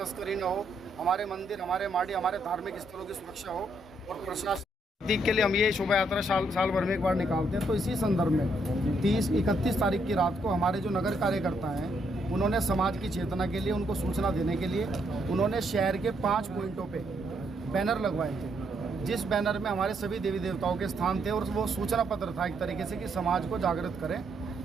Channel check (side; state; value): both; normal; correlation 0.74